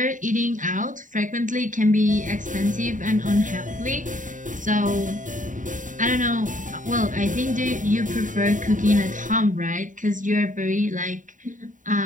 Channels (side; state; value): left; late; 0.37 ms